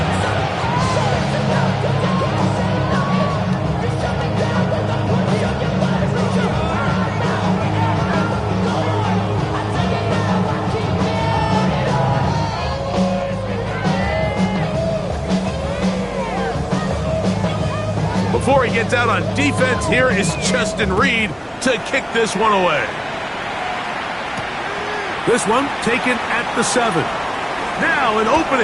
Before he gets out on defense, here is Justin Reed to kick this one away. This one taken at the 7. Now an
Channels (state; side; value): identical; both; correlation 1.00